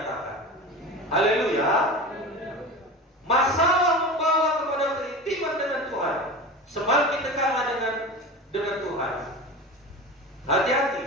Haleluya. Masalah membawa kepada keintiman dengan Tuhan. Semakin dekatlah dengan Tuhan. Hati-hati,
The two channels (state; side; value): normal; both; correlation 0.31